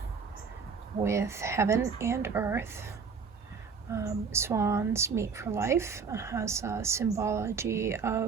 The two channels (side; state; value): left; quieter; 5.5 dB